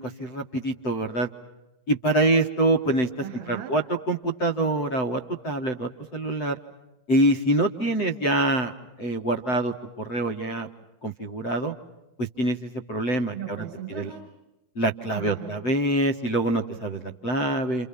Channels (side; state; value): right; late; 7.9 ms